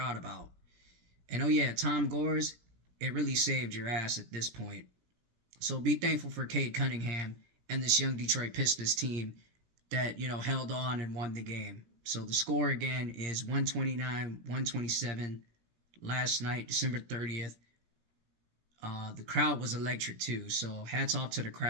about. And, oh, yeah, Tom Gores, it really saved your ass at this point. So be thankful for Cade Cunningham and this young Detroit Pistons team that, you know, held on and won the game. So the score, again, is 129-127 last night, December 30th. The crowd was electric, too. So hats off to the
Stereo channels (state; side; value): late; left; 17 ms